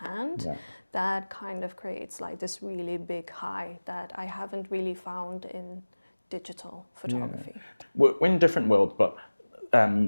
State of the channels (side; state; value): both; inverted; correlation -1.00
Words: that kind of creates like this really big high that I haven't really found in digital photography. We're in different worlds, but